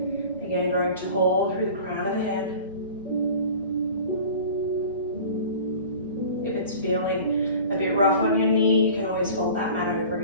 Again, growing tall through the crown of the head. If it's feeling a bit rough on your knee, you can always fold that mat over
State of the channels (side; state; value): both; inverted; correlation -0.42